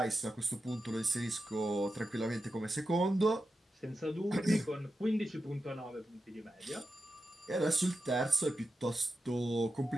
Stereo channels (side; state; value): both; normal; correlation 0.90